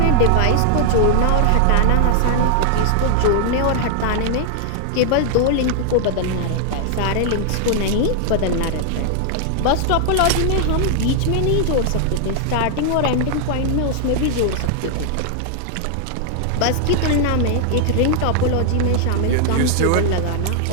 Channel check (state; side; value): different; both; correlation 0.00